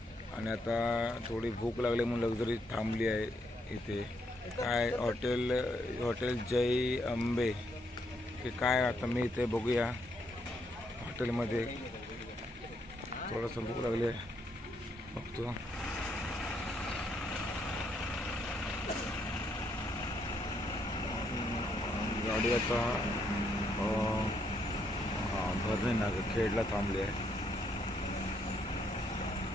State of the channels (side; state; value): both; normal; correlation 0.75